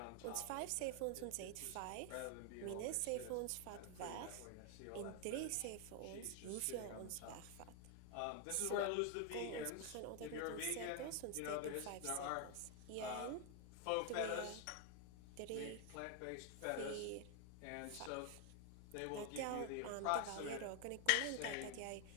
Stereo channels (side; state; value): both; different; correlation 0.00